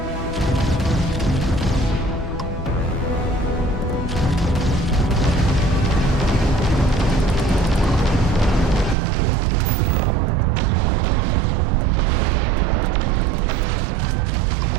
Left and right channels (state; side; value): drops out; left; at 9.0 s